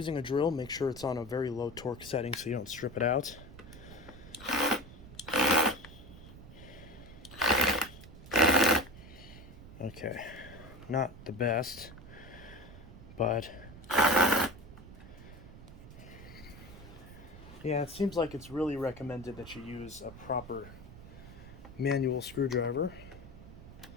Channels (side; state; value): right; noise; rumble, 16 dB below the sound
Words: a drill, make sure it's on a very low torque setting so you don't strip it out. Okay, not the best, but yeah, it seems like it's really recommended that you use a proper manual screwdriver.